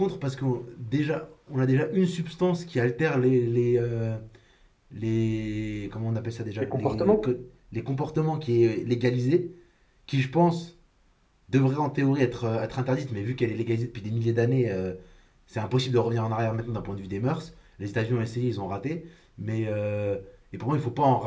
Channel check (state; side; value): identical; both; correlation 1.00